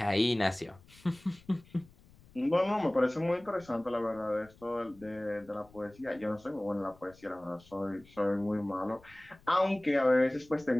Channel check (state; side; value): noise; left; rumble, 26 dB below the sound